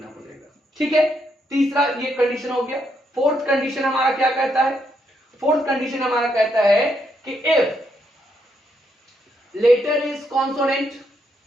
पड़ेगा। ठीक है, तीसरा ये कंडीशन हो गया। फोर्थ कंडीशन हमारा क्या कहता है, फोर्थ कंडीशन हमारा कहता है कि if letter is consonant,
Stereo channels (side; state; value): both; normal; correlation 0.77